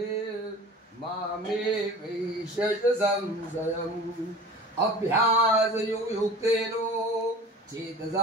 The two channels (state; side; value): normal; both; correlation 0.40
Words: वैश्यच संशयम् अभ्यासयुक्तेन